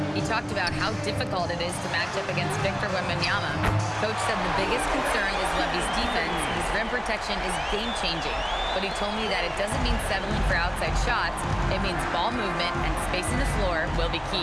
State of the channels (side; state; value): both; identical; correlation 1.00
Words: He talked about how difficult it is to match up against Victor Wembanyama. Coach said the biggest concern is Wemby's defense. His rim protection is game-changing. But he told me that it doesn't mean settling for outside shots. It means ball movement and spacing the floor will be